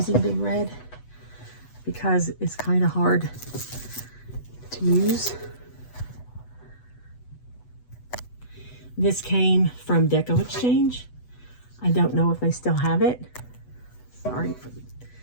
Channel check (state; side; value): late; right; 8.1 ms